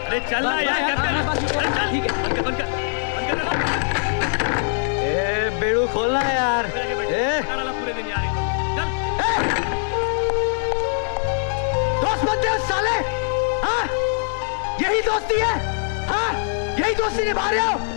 चल ना यार, ठीक है, ए बेड़ू खोलना यार, पूरे दिन यार। दोस्त बनते हो साले, हाँ? यही दोस्ती है, हाँ? यही दोस्ती निभा रहे हो?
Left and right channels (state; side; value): silent; right; 64 dB below the other